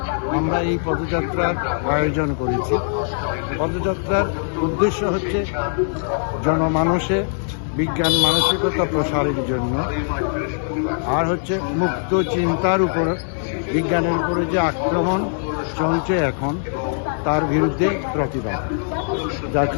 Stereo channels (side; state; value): right; silent; digital silence